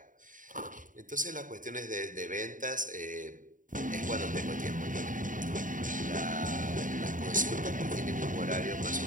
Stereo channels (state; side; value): late; left; 0.38 ms